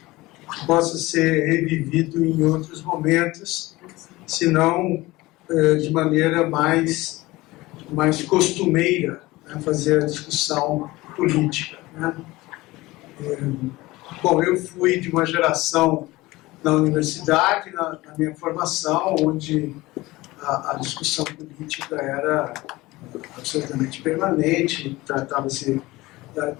que possa ser revivido em outros momentos, se não de maneira mais costumeira, né, fazer a discussão política, né? Bom, eu fui de uma geração na universidade, na minha formação, onde a discussão política era absolutamente permanente, tratava-se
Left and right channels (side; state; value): right; quieter; 19.8 dB